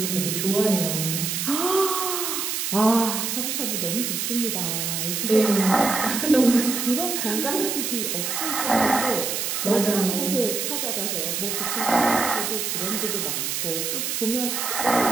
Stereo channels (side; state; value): right; noise; hiss, 1 dB below the sound